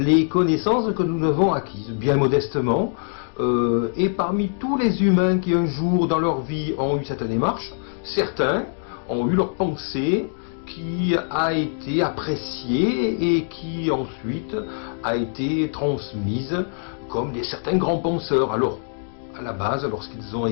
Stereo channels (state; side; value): silent; right; digital silence